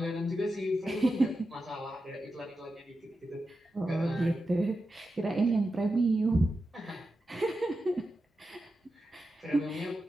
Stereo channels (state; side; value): normal; both; correlation 0.90